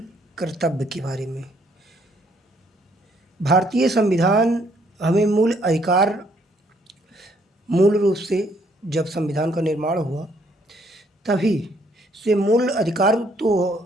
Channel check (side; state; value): both; normal; correlation 0.67